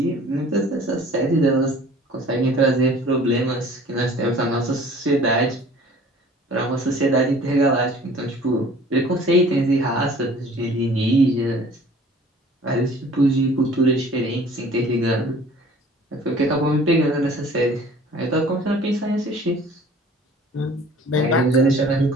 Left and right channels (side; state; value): both; normal; correlation 0.49